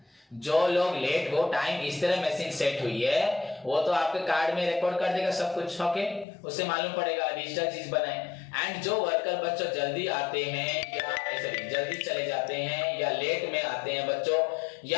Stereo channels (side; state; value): right; drops out; at 6.2 s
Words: जो लोग लेट हो, टाइम इस तरह मशीन सेट हुई है, वो तो आपके कार्ड में रिकॉर्ड कर देगा सब कुछ, ओके, उससे मालूम पड़ेगा, डिजिटल चीज बनाए। एंड जो वर्कर बच्चों जल्दी आते हैं या जल्दी चले जाते हैं या लेट में आते हैं बच्चों